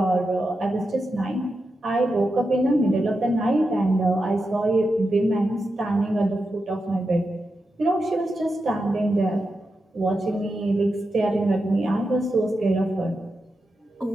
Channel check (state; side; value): normal; both; correlation 0.88